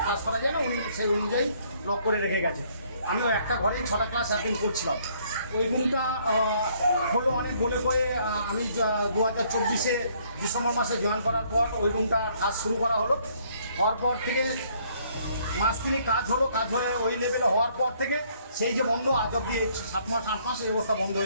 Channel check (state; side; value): inverted; both; correlation -0.65